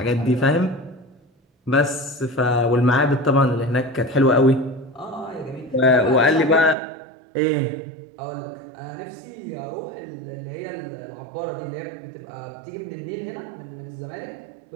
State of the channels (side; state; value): left; drops out; at 6.8 s